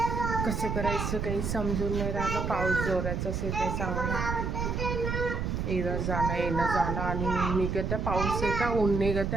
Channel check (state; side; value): noise; right; rumble, 1 dB below the sound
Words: कसं करायचं काही समजून नाही राहिलं. पाऊस जोराचाच येत आहे चांगला. येणं जाणं आणि ऊन निघत आहे, पाऊस येत आहे, ऊन निघत